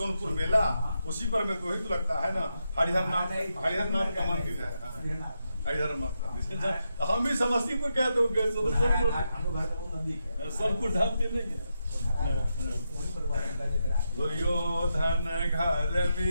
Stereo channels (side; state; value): both; inverted; correlation -0.85